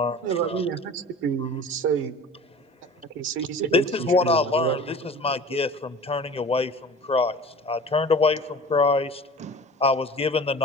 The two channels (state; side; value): normal; both; correlation 0.40